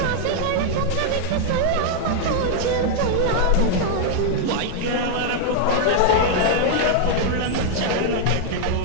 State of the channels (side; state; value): both; different; correlation 0.00